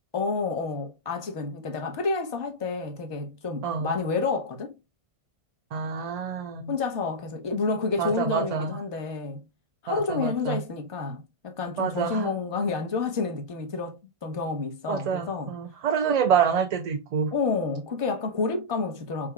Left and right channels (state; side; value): late; left; 1.2 ms